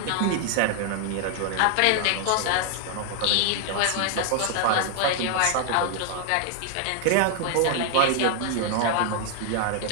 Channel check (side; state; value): both; different; correlation 0.00